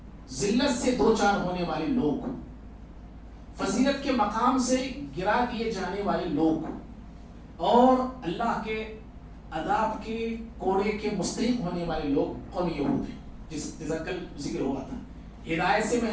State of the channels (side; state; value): both; identical; correlation 1.00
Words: ذلت سے دو چار ہونے والے لوگ، فضیلت کے مقام سے گرا دیے جانے والے لوگ، اور اللہ کے عذاب کے کوڑے کے مستحق ہونے والے لوگ قوم یہود ہیں، جس کل ذکر ہوا تھا. ہدایت سے